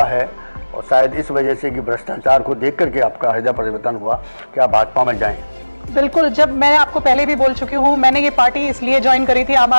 है, और शायद इस वजह से कि भ्रष्टाचार को देख करके आपका हृदय परिवर्तन हुआ कि आप भाजपा में जाएं। बिल्कुल, जब मैं आपको पहले भी बोल चुकी हूँ, मैंने ये पार्टी इसलिए ज्वाइन करी थी, आम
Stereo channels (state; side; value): inverted; both; correlation -1.00